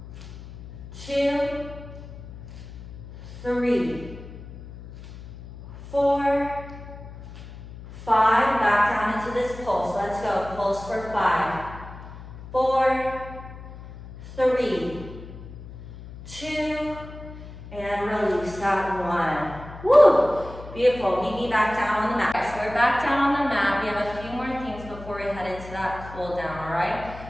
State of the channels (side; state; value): left; noise; hum, 14 dB below the sound